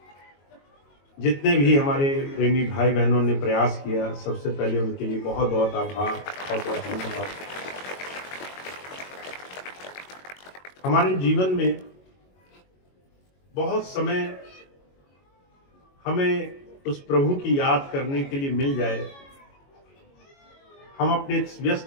जितने भी हमारे प्रेमी भाई बहनों ने प्रयास किया, सबसे पहले उनके लिए बहुत बहुत आभार और बहुत धन्यवाद। हमारे जीवन में बहुत समय हमें उस प्रभु की याद करने के लिए मिल जाए, हम अपने इस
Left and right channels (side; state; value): right; late; 22 ms